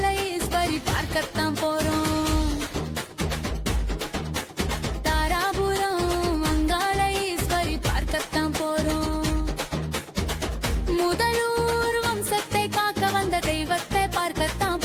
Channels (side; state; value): both; identical; correlation 1.00